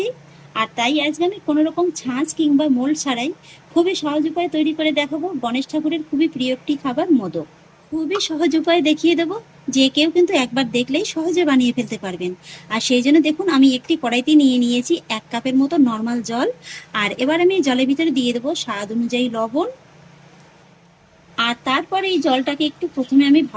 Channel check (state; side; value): identical; both; correlation 1.00